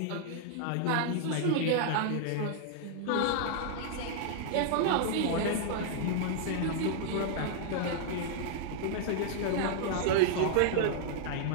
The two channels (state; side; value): different; both; correlation -0.01